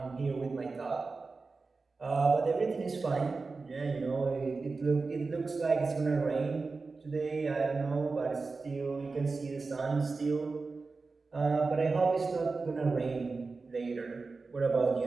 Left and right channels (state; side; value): quieter; left; 4.0 dB